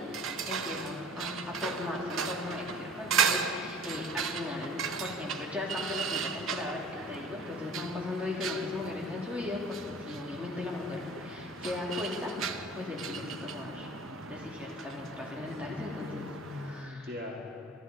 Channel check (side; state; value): both; normal; correlation 0.46